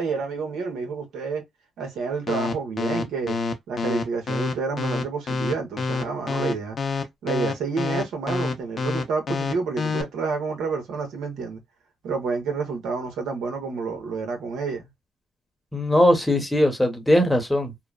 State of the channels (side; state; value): both; normal; correlation 0.79